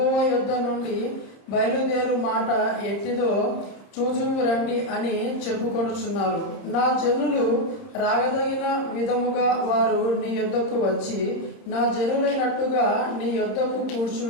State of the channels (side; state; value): right; late; 30 ms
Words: యొద్ద నుండి బయలుదేరు మాట ఎట్టిదో చూచుము రండి అని చెప్పుకొనుచున్నారు. నా జనులు రాగదగిన విధముగా వారు నీ యొద్దకు వచ్చి నా జనులైనట్టుగా నీ యొద్దకు